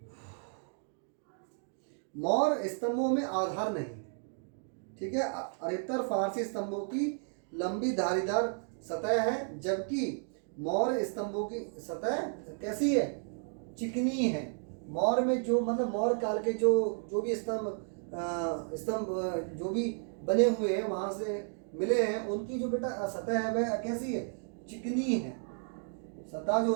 मौर्य स्तंभों में आधार नहीं। ठीक है, अधिकतर फारसी स्तंभों की लंबी धारीदार सतह है, जबकि मौर्य स्तंभों की सतह कैसी है? चिकनी है। मौर्य में जो मतलब मौर्य काल के जो भी स्तंभ जो भी बने हुए हैं वहां से मिले हैं, उनकी जो बेटा सतह है वह कैसी है? चिकनी है। सतह जो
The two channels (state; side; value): silent; left; 56 dB below the other